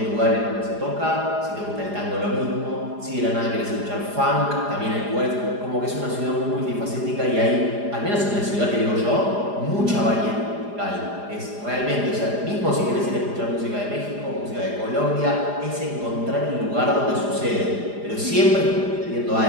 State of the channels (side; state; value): left; late; 4.9 ms